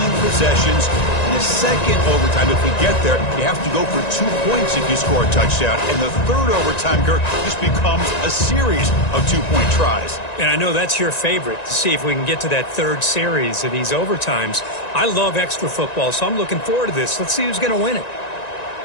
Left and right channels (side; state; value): right; late; 1.9 ms